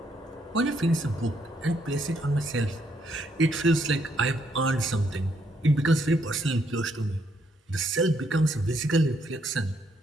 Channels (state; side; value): normal; both; correlation 0.73